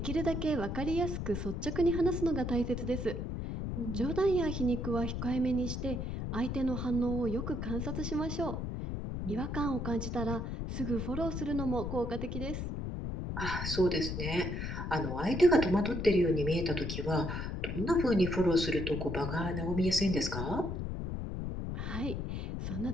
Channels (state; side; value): noise; left; rumble, 3 dB below the sound